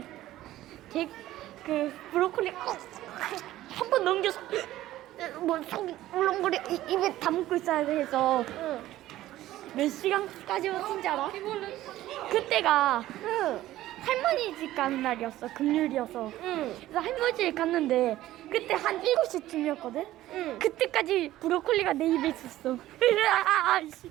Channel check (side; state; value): left; quieter; 14.9 dB